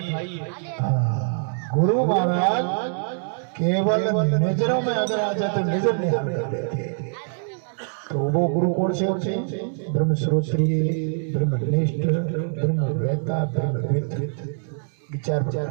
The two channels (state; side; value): silent; left; digital silence